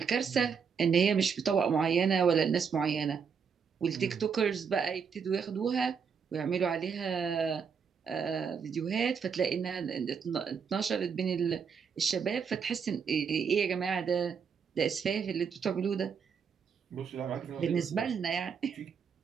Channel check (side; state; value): left; quieter; 6.4 dB